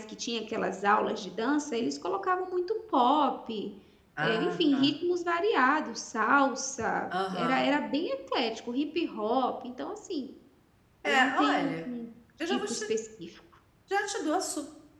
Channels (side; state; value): both; identical; correlation 1.00